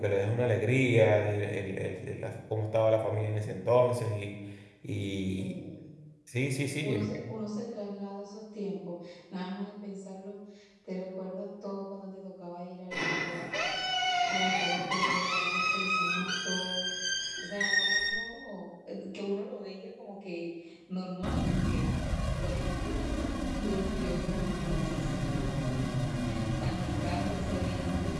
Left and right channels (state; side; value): identical; both; correlation 1.00